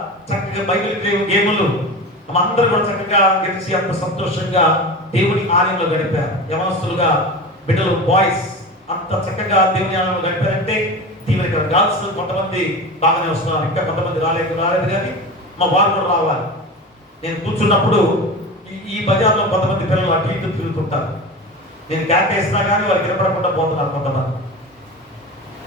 చక్కగా బైబిల్ గేములు అందరూ కూడా చక్కగా గెలిచి అంత సంతోషంగా దేవుని ఆలయంలో గడిపారు. యవనస్తులుగా బిడ్డలు, బాయ్స్ అంత చక్కగా దేవుని ఆలయంలో గడిపారంటే దీవెన. గర్ల్స్ కొంతమంది బాగానే వస్తున్నారు, ఇంకా కొంతమంది రాలేదు కానీ మా వారు కూడా రావాలి. నేను కూర్చున్నప్పుడు ఈ బజార్లో కొంతమంది పిల్లలు అటు ఇటు తిరుగుతుంటారు. నేను క్యాట్ వేసినా కానీ వారు వినపడకుండా పోతున్నారు కొంతమంది.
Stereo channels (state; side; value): normal; both; correlation 0.29